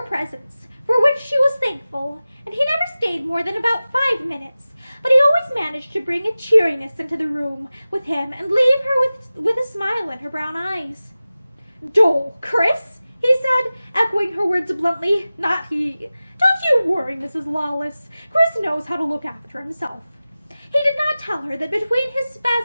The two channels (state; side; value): inverted; both; correlation -0.96